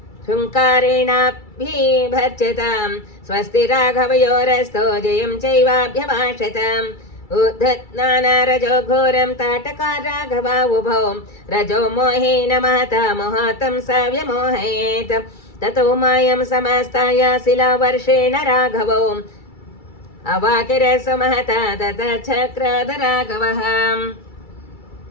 हुङ्कारेणाभिभर्जतां स्वस्ति राघवयोरस्तो जयं चैवाभ्यभाषत उद्धत्नानारजो घोरं ताटका राघवा उभौ रजो मोहेन महता मोहतं स व्यमोहयेत् ततो मायं समस्ताय शिलावर्षेण राघवो अवाकिरसमहता ततः चक्राद राघवः।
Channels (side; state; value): right; late; 2.3 ms